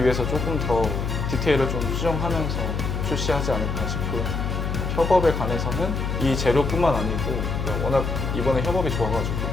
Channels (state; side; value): noise; left; hum, 2 dB below the sound